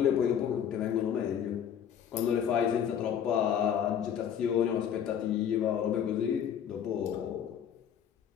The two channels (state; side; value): quieter; right; 8.8 dB